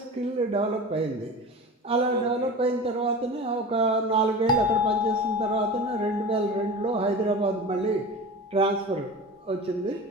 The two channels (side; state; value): both; normal; correlation 0.32